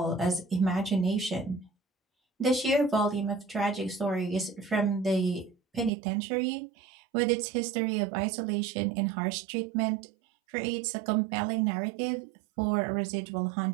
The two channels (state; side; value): drops out; left; at 5.9 s